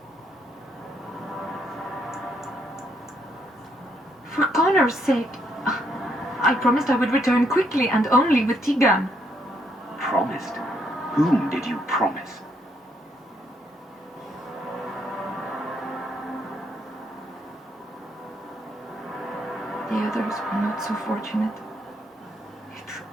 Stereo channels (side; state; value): both; normal; correlation 0.73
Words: For Connor's sake, I promised I would return quickly and only with Tigan. Promised? Whom did you promise? The others were not so fortunate. It